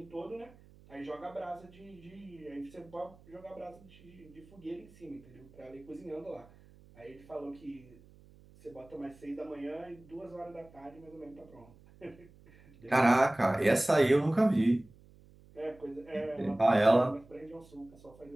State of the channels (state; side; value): noise; right; hum, 24 dB below the sound